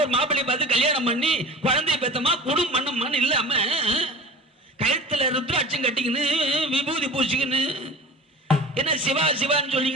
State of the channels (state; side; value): normal; both; correlation 0.36